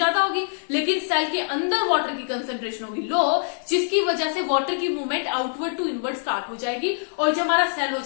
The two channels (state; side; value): silent; right; digital silence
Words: होगी, लेकिन सेल के अंदर वाटर की कंसंट्रेशन होगी लो, जिसकी वजह से वाटर की movement outward to inward start हो जाएगी और जो हमारा सेल हो